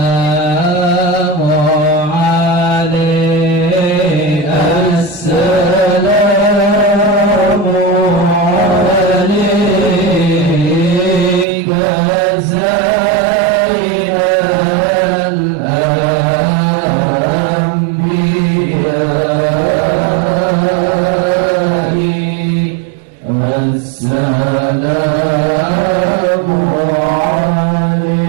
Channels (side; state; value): left; drops out; at 11.5 s